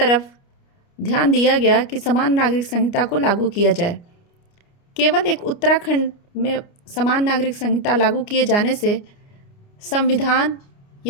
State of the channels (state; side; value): late; right; 29 ms